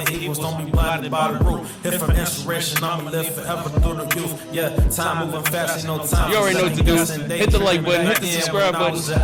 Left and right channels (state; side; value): identical; both; correlation 1.00